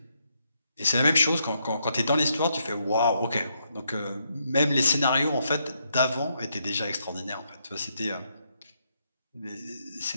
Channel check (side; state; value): both; inverted; correlation -0.78